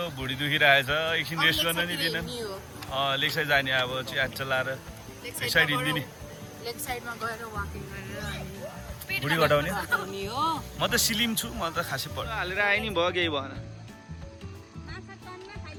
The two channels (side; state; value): both; identical; correlation 1.00